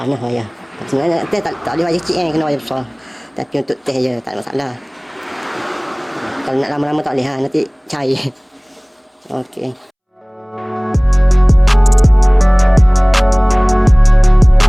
wayar. Sebenarnya teh tak boleh wayar kecil kena wayar besar. Tapi untuk teh je tak ada masalah. Kalau nak lama-lama tak boleh nanti cair. Okey.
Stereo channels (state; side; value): identical; both; correlation 1.00